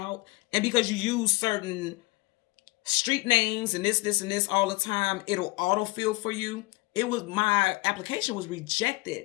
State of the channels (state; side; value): quieter; right; 22.4 dB